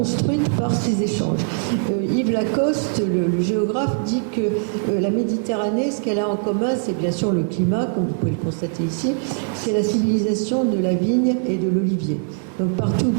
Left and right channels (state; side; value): silent; left; 65 dB below the other